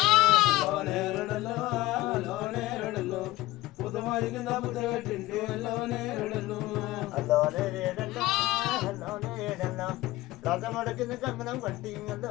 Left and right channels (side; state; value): right; quieter; 18.1 dB